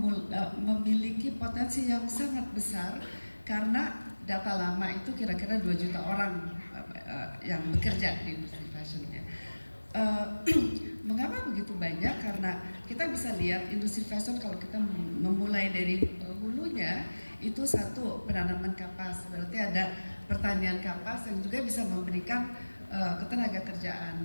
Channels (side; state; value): both; inverted; correlation -1.00